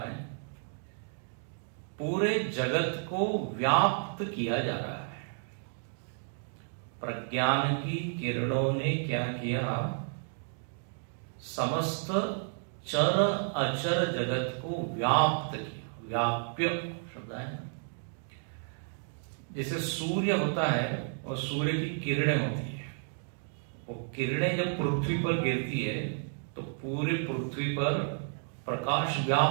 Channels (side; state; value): left; silent; 57 dB below the other